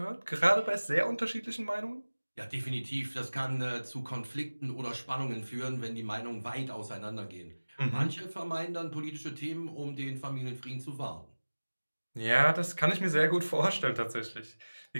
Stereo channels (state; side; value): inverted; both; correlation -1.00